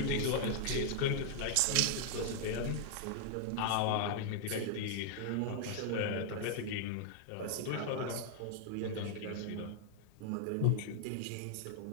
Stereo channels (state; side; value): different; both; correlation 0.00